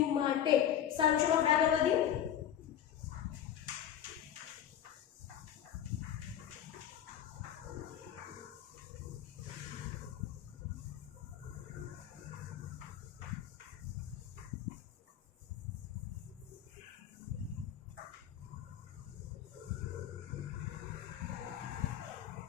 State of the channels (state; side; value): quieter; right; 10.2 dB